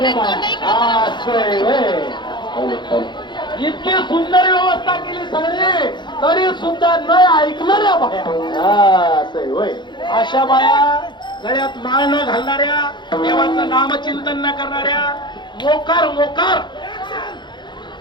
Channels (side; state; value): right; late; 0.22 ms